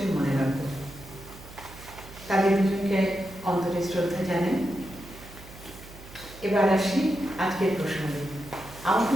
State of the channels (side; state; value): right; noise; hum, 18 dB below the sound